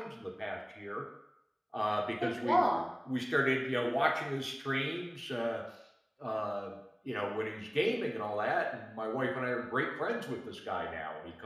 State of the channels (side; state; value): both; identical; correlation 1.00